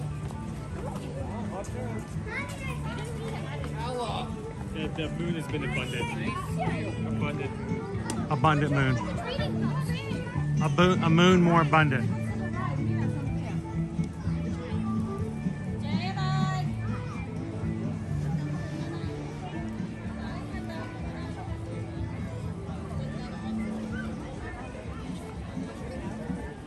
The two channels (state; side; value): identical; both; correlation 1.00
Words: The moon has been abundant. Abundant moon. Abundant moon. A moon more abundant.